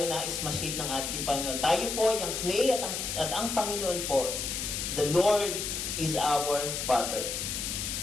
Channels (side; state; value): left; noise; hiss, 3 dB below the sound